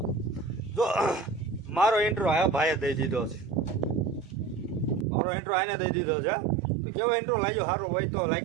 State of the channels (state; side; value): drops out; left; at 5.1 s